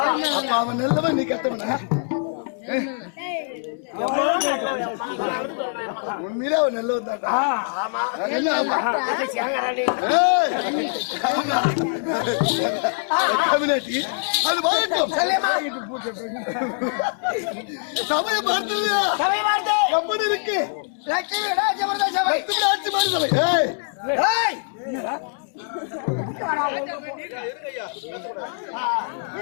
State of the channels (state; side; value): silent; right; 63 dB below the other